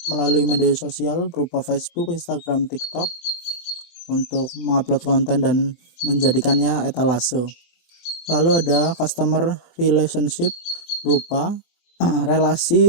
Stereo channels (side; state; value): right; late; 23 ms